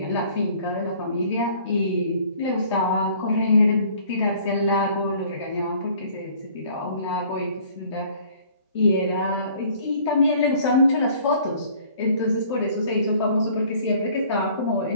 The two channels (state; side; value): inverted; both; correlation -0.54